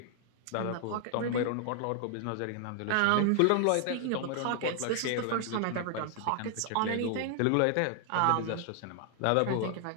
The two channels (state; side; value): different; both; correlation 0.00